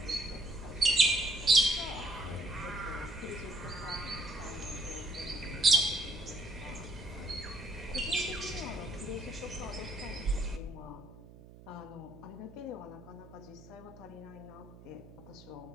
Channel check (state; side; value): noise; right; hum, 19 dB below the sound